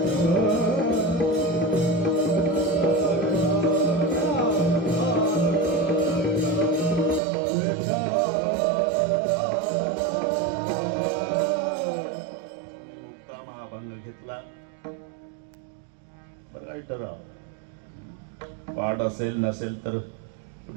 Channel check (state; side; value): drops out; left; at 7.2 s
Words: घेतला बरं, ठराव पाठ असेल नसेल तर